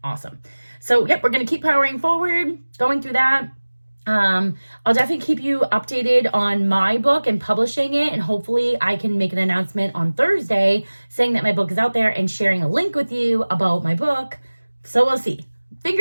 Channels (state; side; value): inverted; both; correlation -1.00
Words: awesome. So, yep, we're going to keep powering forward, going through that. I'll definitely keep you updated on my book and publishing it, and hopefully I can make an announcement on Thursday saying that my book is out there and sharing a link with you about my book. So we'll see.